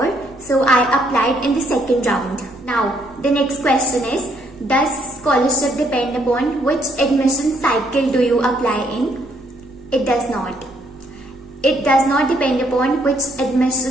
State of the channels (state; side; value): noise; right; rumble, 26 dB below the sound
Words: So I applied in the second round. Now, the next question is, does scholarship depend upon which admission cycle do you apply in? It does not. It does not depend upon which